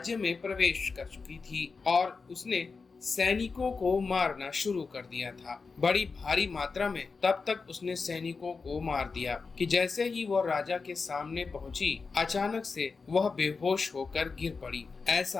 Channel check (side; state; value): right; quieter; 4.6 dB